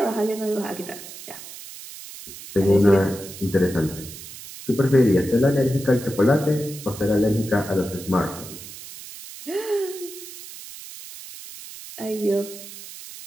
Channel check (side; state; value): right; noise; hiss, 14 dB below the sound